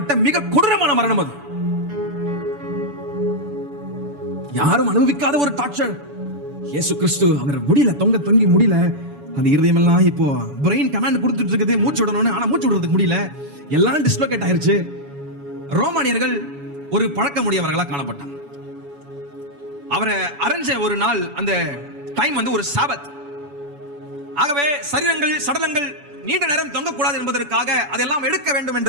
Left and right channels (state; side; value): late; left; 7.0 ms